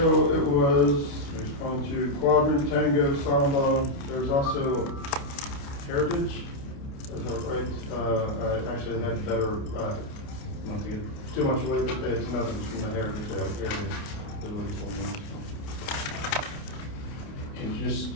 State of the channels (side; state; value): right; late; 29 ms